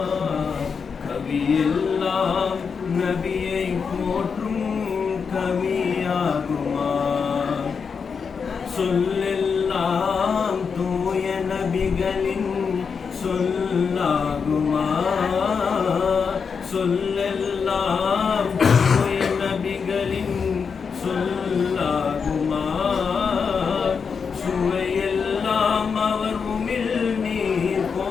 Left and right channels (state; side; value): quieter; right; 5.9 dB